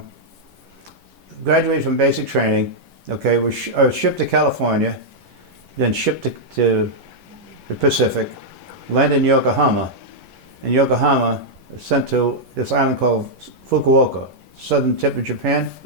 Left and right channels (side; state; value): left; late; 11 ms